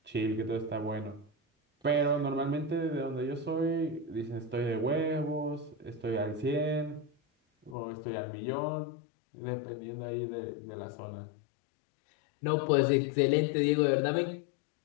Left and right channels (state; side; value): drops out; right; at 7.8 s